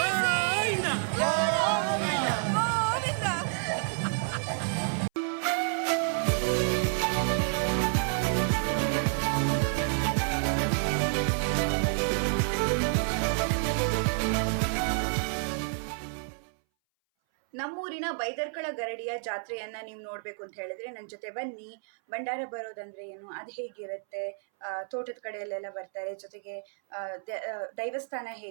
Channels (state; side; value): silent; left; 58 dB below the other